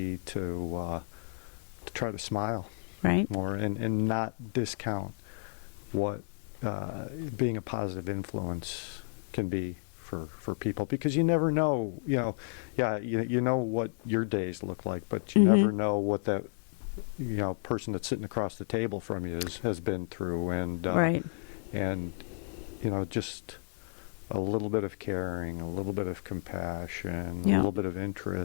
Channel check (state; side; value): silent; right; 56 dB below the other